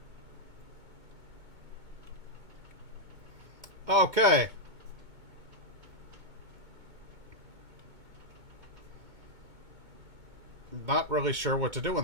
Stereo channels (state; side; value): late; left; 2.2 ms